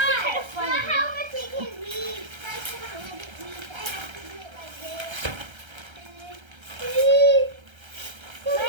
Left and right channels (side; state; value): left; late; 1.3 ms